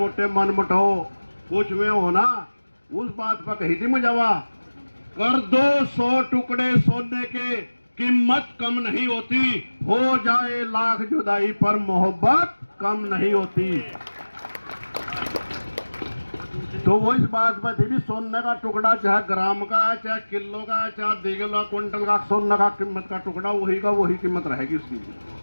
मन मुटाओ कुछ में होना, उस बात पर कही थी मुझावा, कर दो 100 टुकड़े सोने के, कीमत कम नहीं होती, हो जाए लाख जुदाई पर मोहब्बत कम नहीं होती। तो वो इस बात पर थी भी, सोने का टुकड़ा चाहे ग्राम का है, चाहे किलो का है, चाहे 2 किलो क्विंटल का सोने का कीमत का टुकड़ा, वही का वही कीमत रहेगी उसकी।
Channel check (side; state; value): both; inverted; correlation -1.00